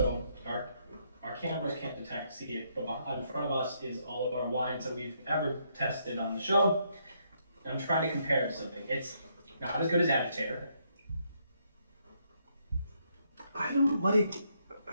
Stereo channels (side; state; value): both; inverted; correlation -0.74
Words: our cameras can't see it, but in front of us is all of our wines that we've ever tested on the show. I'm trying to compare it to something. It's not as good as Agitator. I don't like.